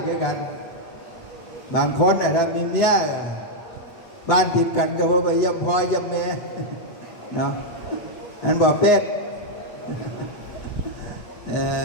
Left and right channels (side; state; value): right; late; 8.5 ms